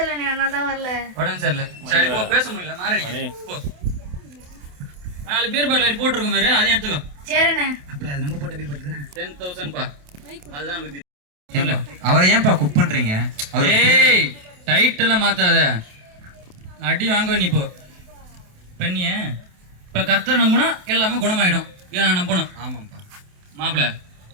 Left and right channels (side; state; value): left; late; 28 ms